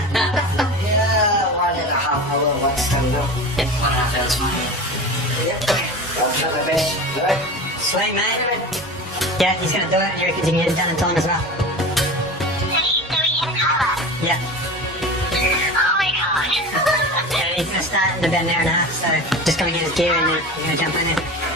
1.5 hours, what's time now? Yep, 1.5 hours, fine. Yep, I'll try my best. Alright? Sweet, mate. Yeah, he's gonna do it, and you reckon you can get it done in time as well? Yeah. Oh my god. Yeah, he's gonna start in about an hour and a half, so just gonna get his gear and then we're gonna jump in there.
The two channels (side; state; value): both; normal; correlation 0.31